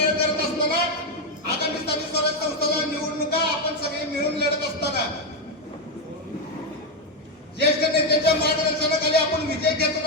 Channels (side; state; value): both; normal; correlation 0.06